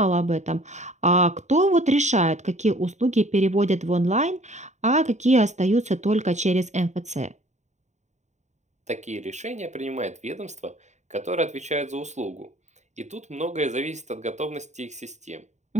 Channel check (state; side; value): late; left; 0.34 ms